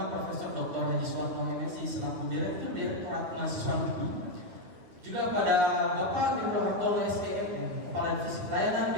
Profesor Dr. Haji Suatno MSI selaku Direktur Direktorat Mahasiswa UPI, juga pada Bapak Gendro Hartono SPM, Kepala Divisi Pelayanan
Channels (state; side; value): late; left; 9.5 ms